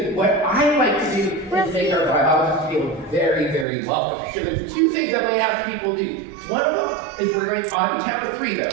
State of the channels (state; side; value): drops out; left; at 3.7 s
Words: what I like to do is make our biologists feel very, very welcome. So there's 2 things I'm going to ask people to do. One of them is we're going on the count of 3